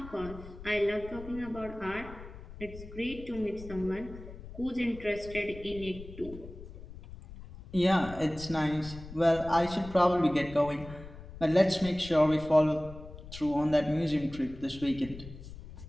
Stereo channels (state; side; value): noise; left; rumble, 15 dB below the sound